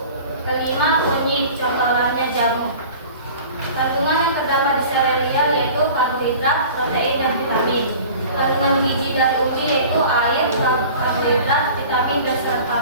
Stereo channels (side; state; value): both; inverted; correlation -0.42